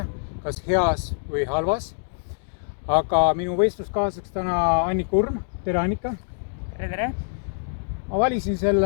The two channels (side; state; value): right; silent; digital silence